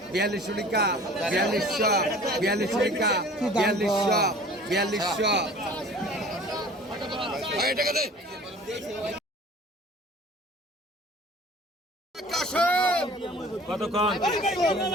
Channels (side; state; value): both; normal; correlation 0.46